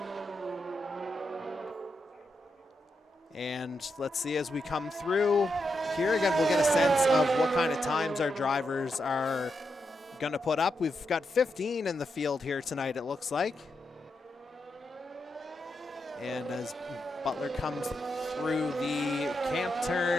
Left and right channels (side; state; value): both; normal; correlation 0.84